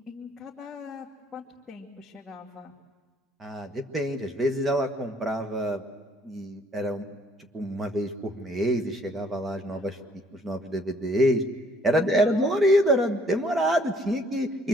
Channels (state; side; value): normal; both; correlation 0.62